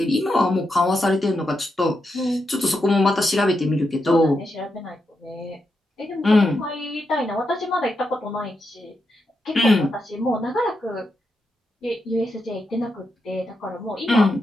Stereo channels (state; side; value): normal; both; correlation 0.85